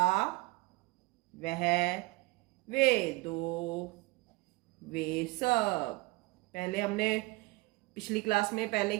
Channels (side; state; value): left; quieter; 23.6 dB